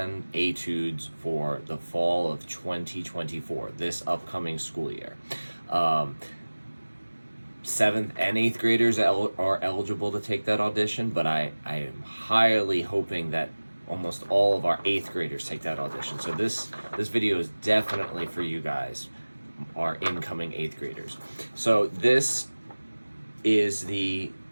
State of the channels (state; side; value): inverted; both; correlation -1.00